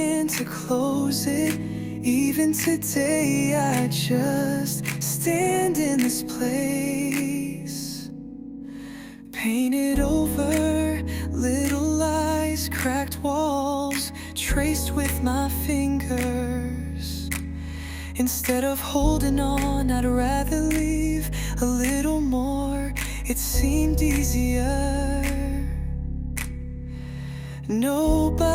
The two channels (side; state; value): both; identical; correlation 1.00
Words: to close it. Even today I just stand in this place, painted over, little lies, cracked walls, traced with my fingers. Instead of holding on, I'd rather leave a little more. It seemed easier.